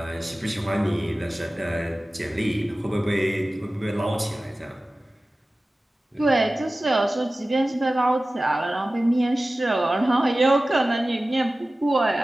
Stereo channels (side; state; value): both; normal; correlation 0.96